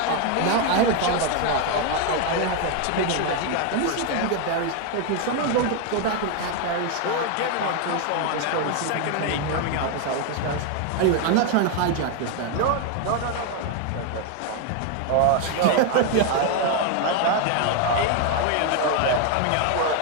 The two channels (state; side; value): different; both; correlation 0.01